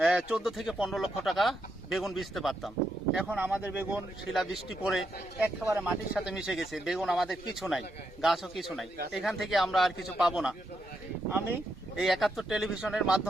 14 থেকে 15 লক্ষ টাকা বেগুন বেচতে পারতাম। এখন আমাদের বেগুন শিলাবৃষ্টি পড়ে একেবারে মাটির সাথে মিশে গেছে, বেগুন আমাদের কিছু নাই, গাছও কিছু নাই। এখান থেকে আমরা আর কিছু পাবো না। আমি এই 71 টেলিভিশনের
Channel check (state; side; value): normal; both; correlation 0.81